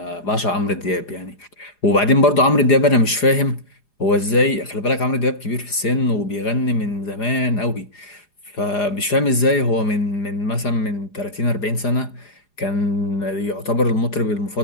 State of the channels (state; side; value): late; right; 4.9 ms